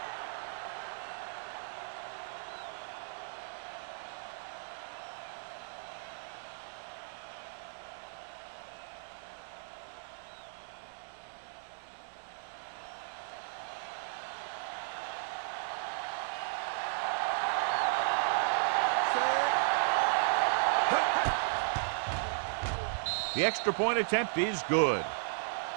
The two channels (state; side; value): silent; left; 54 dB below the other